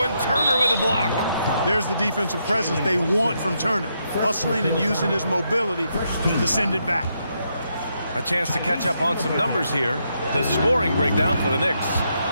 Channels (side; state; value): both; inverted; correlation -0.79